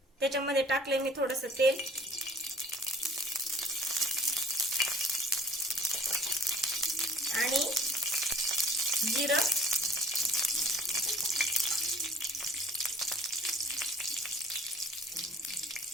त्याच्यामध्ये टाकले मी थोडंसं तेल आणि जिरं,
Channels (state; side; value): normal; both; correlation 0.52